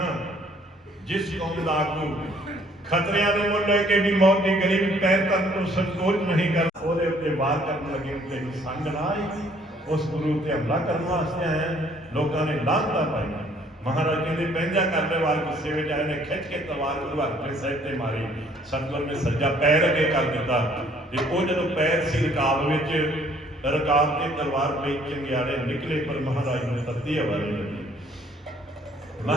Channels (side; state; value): both; normal; correlation 0.61